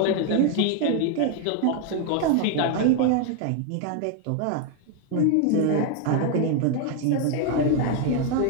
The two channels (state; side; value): different; both; correlation 0.01